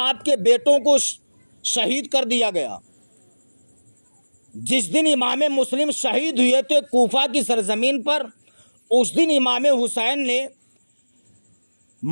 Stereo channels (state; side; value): inverted; both; correlation -1.00